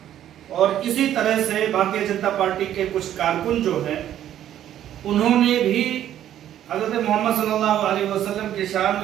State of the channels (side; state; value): left; quieter; 11.3 dB